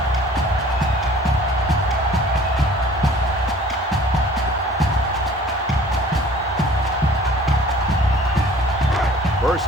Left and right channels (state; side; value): normal; both; correlation 0.50